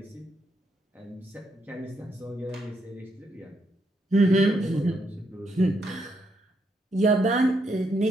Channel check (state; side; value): normal; both; correlation 0.77